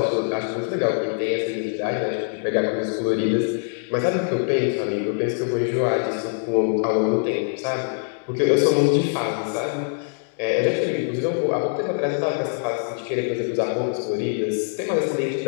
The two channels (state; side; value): silent; right; digital silence